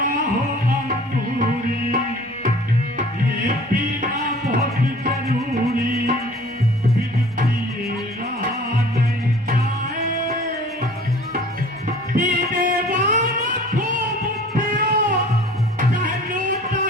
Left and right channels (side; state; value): both; normal; correlation 0.48